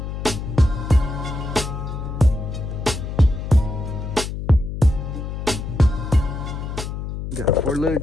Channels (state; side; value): noise; left; hum, 6 dB below the sound